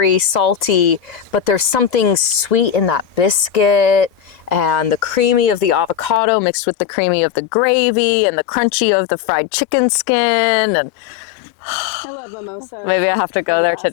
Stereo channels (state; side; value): drops out; right; at 6.2 s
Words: salty, but there's something sweet in that biscuit and the creamy of the avocado mixed with the creamy of the gravy and the crunchy of the fried chicken skin. And I love mimosas. maybe I have to go They're the there best.